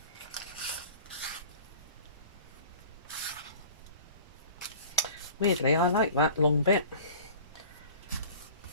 Weirdly, I like that long bit.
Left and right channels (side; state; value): both; inverted; correlation -0.43